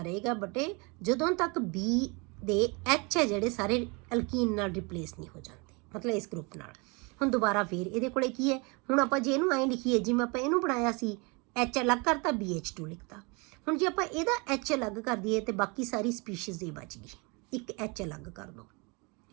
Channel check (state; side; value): quieter; left; 29.6 dB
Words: ਰਹੇਗਾ ਬੇਟੇ ਜਦੋਂ ਤੱਕ ਬੀ ਦੇ ਐਚ ਹੈ ਜਿਹੜੇ ਸਾਰੇ ਅਲਕੀਨ ਨਾਲ ਰਿਪਲੇਸ ਨਹੀਂ ਹੋ ਜਾਂਦੇ, ਮਤਲਬ ਇਸ ਗਰੁੱਪ ਨਾਲ। ਹੁਣ ਦੁਬਾਰਾ ਫੇਰ ਇਹਦੇ ਕੋਲੇ ਕੀ ਹੈ, ਹੁਣ ਆਪਾਂ ਜੇ ਇਹਨੂੰ ਐਂ ਲਿਖੀਏ ਜਿਵੇਂ ਆਪਾਂ ਇਹਨੂੰ ਬਣਾਇਆ ਸੀ ਐਚ ਅਲੱਗ ਕਰਤਾ BH2 ਲਿਖਤਾ। ਹੁਣ ਜੇ ਆਪਾਂ ਇਹਦਾ ਐਚ ਅਲੱਗ ਕਰ ਦਈਏ ਤੇ ਬਾਕੀ ਸਾਰੀ ਸਪੀਸ਼ੀਜ਼ ਇਹ ਬਚ ਗਈ, ਇੱਕ ਐਚ ਅਲੱਗ ਕਰ ਦੋ।